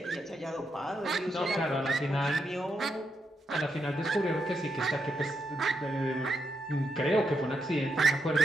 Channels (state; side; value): normal; both; correlation 0.82